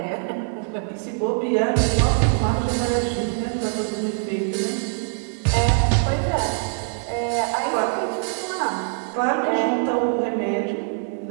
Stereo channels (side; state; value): left; silent; 63 dB below the other